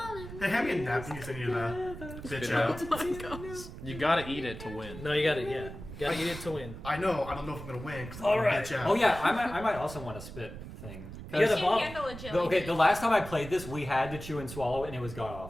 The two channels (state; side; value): noise; right; rumble, 12 dB below the sound